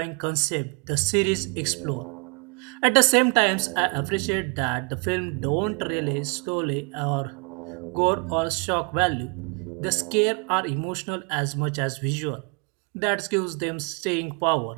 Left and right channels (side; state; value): left; quieter; 35.2 dB